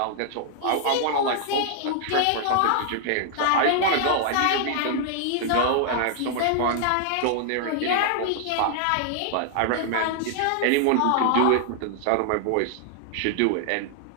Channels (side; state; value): both; different; correlation -0.01